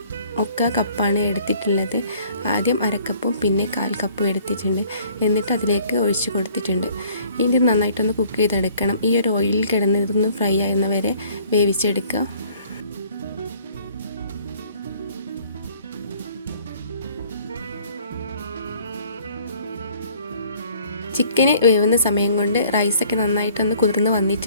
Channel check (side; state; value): both; inverted; correlation -0.57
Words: 1/4 കപ്പാണ് എടുത്തിട്ടുള്ളത്. ആദ്യം 1/2 കപ്പും പിന്നെ 1/4 കപ്പും എടുത്തിട്ടുണ്ട്. എന്നിട്ട് അതിലേക്ക് ഒഴിച്ച് കൊടുത്തിട്ടുണ്ട്. ഇനി നന്നായിട്ടൊന്ന് കുക്ക് ചെയ്തെടുക്കണം. ഈ ഒരു ഓയിലിൽ കിടന്ന് ഇതൊന്ന് ഫ്രൈ ആകുന്നവരെ വേവിച്ചെടുക്കുക. ചിക്കന് വേവുന്ന സമയം കൊണ്ട് റൈസൊക്കെ നന്നായിട്ടൊന്ന് കുതിർന്ന്